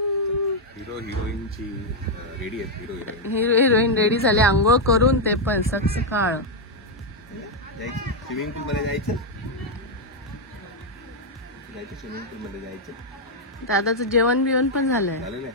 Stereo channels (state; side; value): normal; both; correlation 0.00